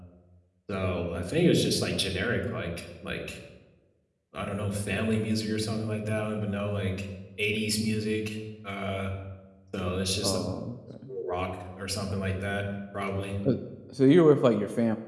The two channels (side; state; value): both; identical; correlation 1.00